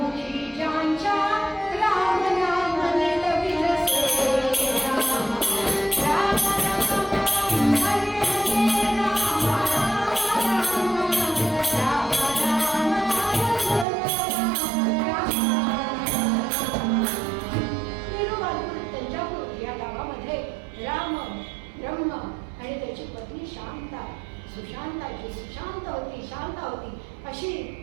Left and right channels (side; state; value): left; drops out; at 13.9 s